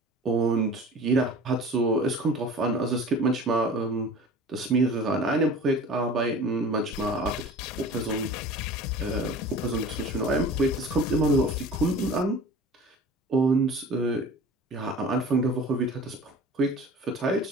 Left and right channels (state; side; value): normal; both; correlation 0.41